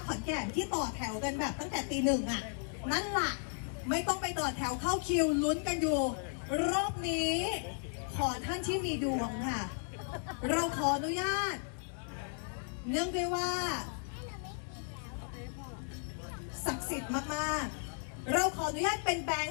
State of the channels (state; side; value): silent; right; 54 dB below the other